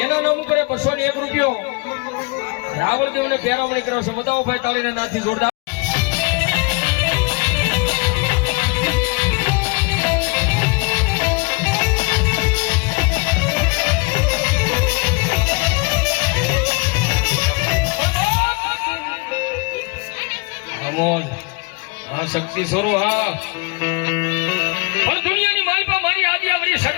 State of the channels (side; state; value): right; quieter; 30.5 dB